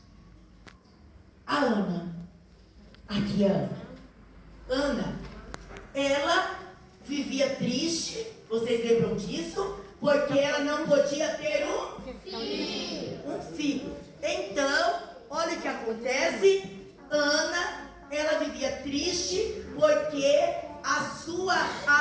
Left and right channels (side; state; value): both; identical; correlation 1.00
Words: A Ana. Aqui, Ana. Ana, ela vivia triste, vocês lembram disso? Porque ela não podia ter um filho. Então, olha o que acontece. Ana, ela vivia triste porque a sua